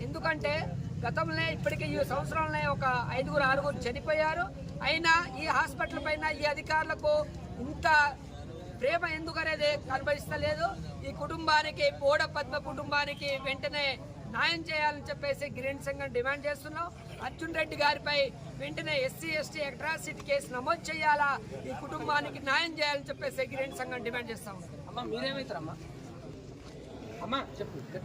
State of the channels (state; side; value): identical; both; correlation 1.00